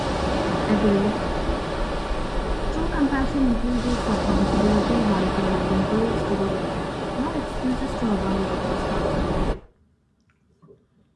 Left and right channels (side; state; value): both; identical; correlation 1.00